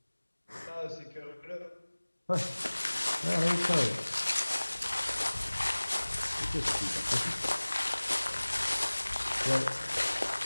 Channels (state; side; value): inverted; both; correlation -1.00